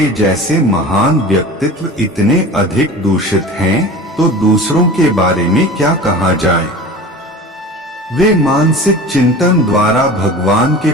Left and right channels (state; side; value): normal; both; correlation 0.37